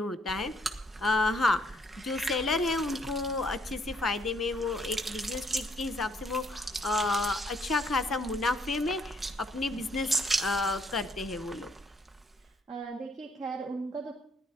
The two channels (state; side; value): normal; both; correlation 0.68